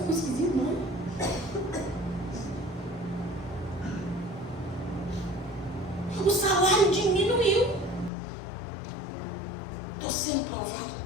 esquisito, não. O salário diminuiu. Estou sendo provado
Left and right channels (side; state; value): right; drops out; at 8.1 s